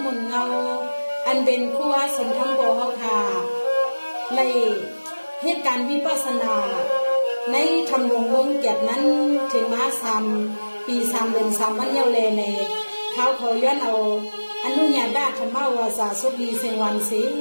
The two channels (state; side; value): inverted; both; correlation -1.00